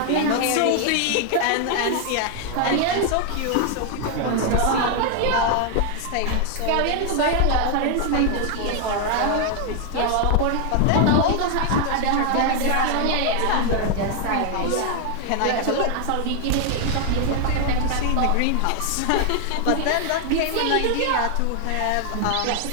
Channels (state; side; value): different; both; correlation 0.00